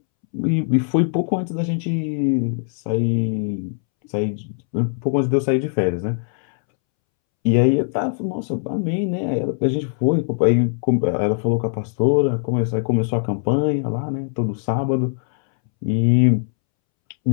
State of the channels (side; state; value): right; silent; 65 dB below the other